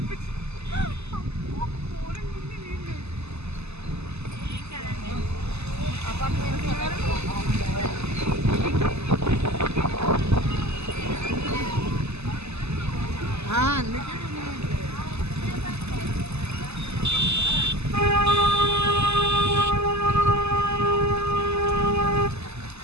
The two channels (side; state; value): left; late; 0.80 ms